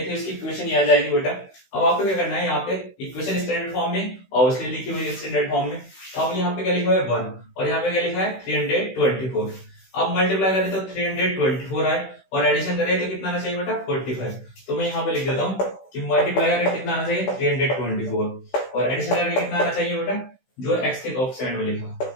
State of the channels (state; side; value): late; right; 16 ms